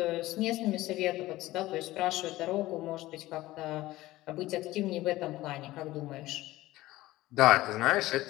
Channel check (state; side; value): quieter; right; 17.3 dB